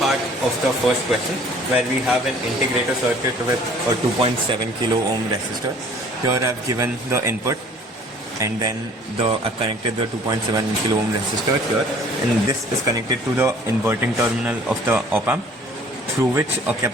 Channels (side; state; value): both; normal; correlation 0.53